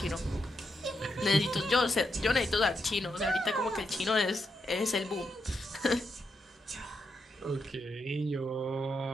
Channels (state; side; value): normal; both; correlation 0.83